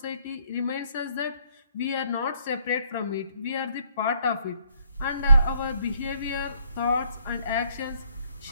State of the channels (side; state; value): both; inverted; correlation -0.67